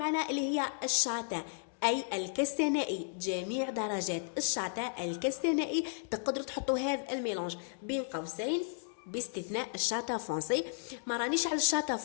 اللي هي الشاتا اي الكستنائي، جميع درجات الشاتا الكستنائي تقدروا تحطوا هذا الميلونج بين قوسين باستثناء الشاتا فونسي. ما رانيش على الشاتا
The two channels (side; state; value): right; silent; digital silence